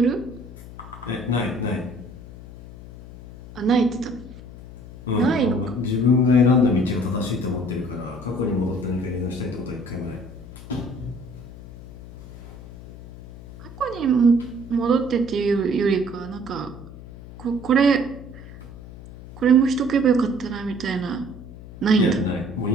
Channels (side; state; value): left; noise; hum, 16 dB below the sound